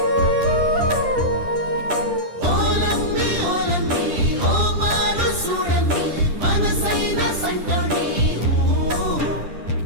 ఓలమ్మి ఓలమ్మి ఓ మారు చూడమ్మి మనసైన సంటోని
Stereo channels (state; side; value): late; left; 10 ms